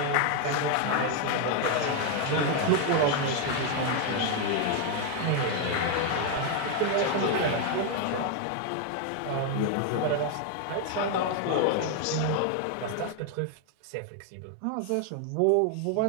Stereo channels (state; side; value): different; both; correlation 0.01